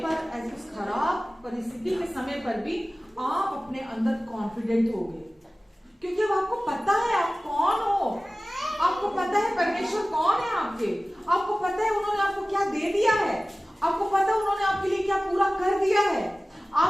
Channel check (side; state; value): both; normal; correlation 0.97